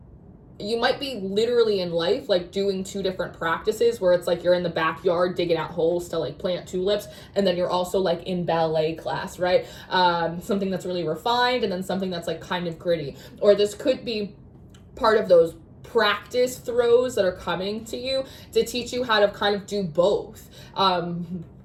you might be literally in life like doing two different practices where it's like you're in the backyard digging out holes to like plant tulips, and then you're also like in ballet class, right? Something that's really refined, and then something that's like kind of gritty. Or this could be part of those practice throws that are coming to you to teach you how to kind of do both.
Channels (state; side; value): identical; both; correlation 1.00